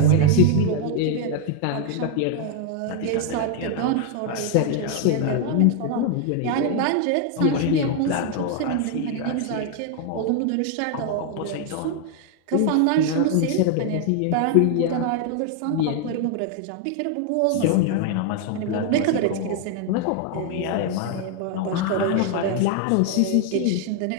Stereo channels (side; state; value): both; different; correlation 0.00